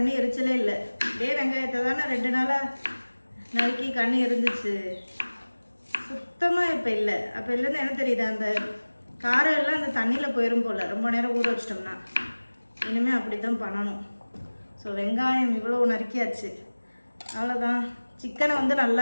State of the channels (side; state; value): both; inverted; correlation -1.00